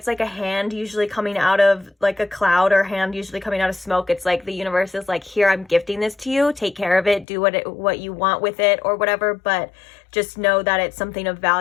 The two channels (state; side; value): drops out; right; at 7.2 s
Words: like a hand usually coming out of like a cloud, or hand usually coming out of smoke. It's like the universe is like, here, I'm gifting this to you, take care of it, do what you want with it or whatever, but just know that it's something of